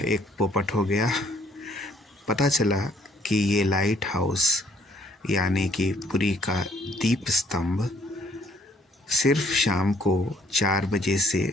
एक पोपट हो गया। पता चला कि ये लाइट हाउस यानी कि पुरी का दीप स्तंभ सिर्फ शाम को 4 बजे से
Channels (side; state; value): both; normal; correlation 0.64